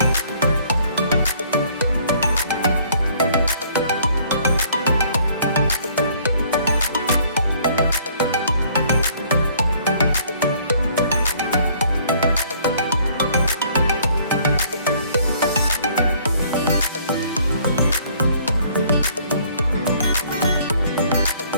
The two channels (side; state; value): both; inverted; correlation -0.59